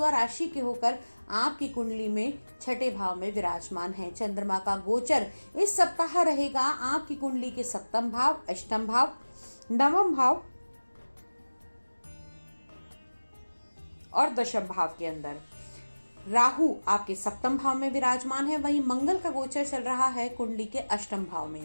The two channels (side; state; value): both; inverted; correlation -1.00